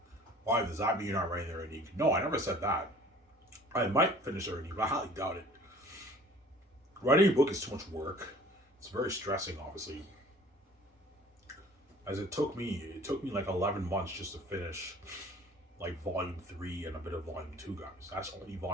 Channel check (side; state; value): both; normal; correlation 0.49